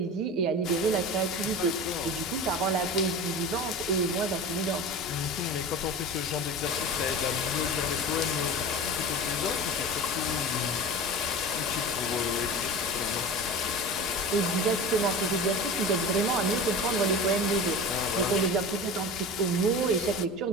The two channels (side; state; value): both; normal; correlation 0.32